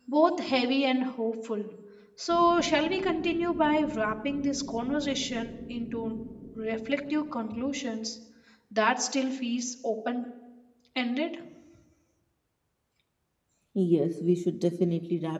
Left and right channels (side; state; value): both; identical; correlation 1.00